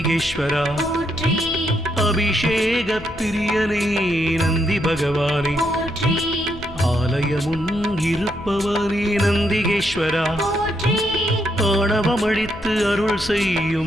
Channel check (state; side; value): noise; left; rumble, 17 dB below the sound